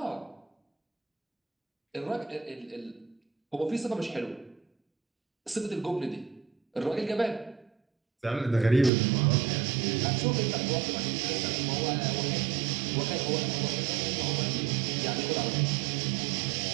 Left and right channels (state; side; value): drops out; left; at 8.9 s